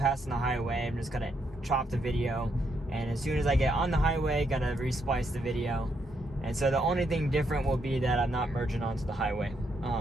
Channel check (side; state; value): both; normal; correlation 0.77